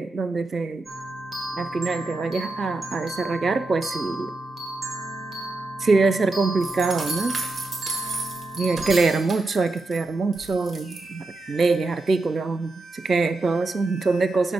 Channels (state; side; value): quieter; left; 3.2 dB